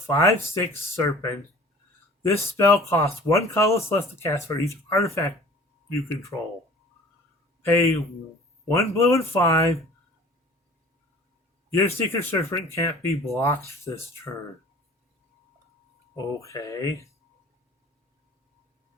Serpent. This spell costs 1 colorless less to cast for each artifact you control. Pay 1 blue and 5. Gear Seeker Serpent can't be blocked this turn. Okay.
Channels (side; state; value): both; normal; correlation 0.46